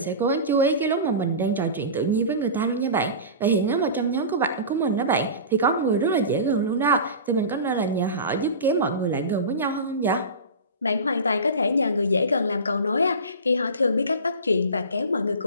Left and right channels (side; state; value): both; inverted; correlation -0.31